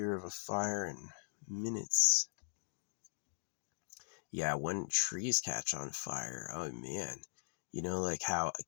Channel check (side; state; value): right; silent; digital silence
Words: of a fire in minutes. Yeah, when trees catch on fire, oh man. You know, like how a